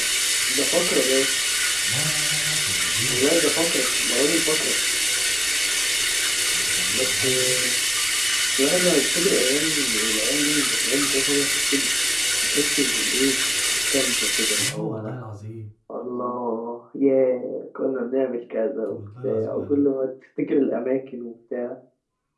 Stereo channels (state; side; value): identical; both; correlation 1.00